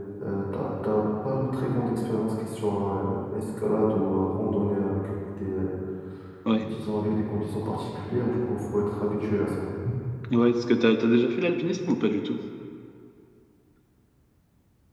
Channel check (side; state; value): both; identical; correlation 1.00